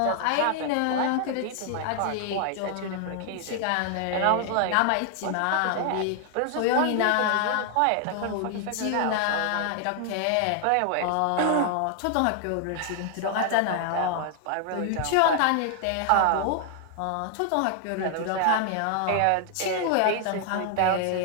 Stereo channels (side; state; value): both; different; correlation 0.00